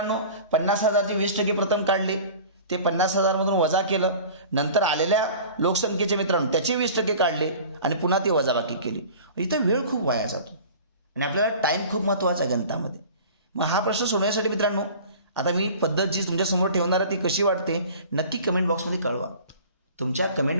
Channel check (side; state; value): both; inverted; correlation -0.42